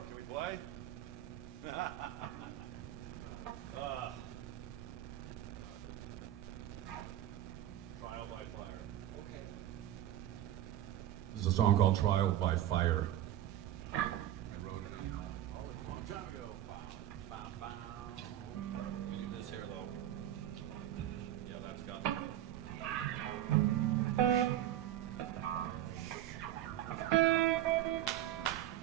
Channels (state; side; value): quieter; left; 12.6 dB